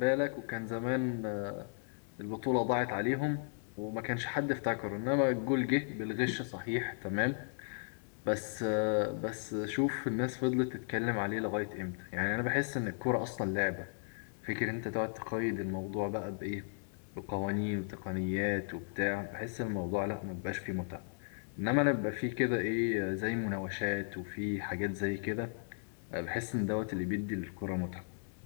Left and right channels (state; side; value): silent; right; digital silence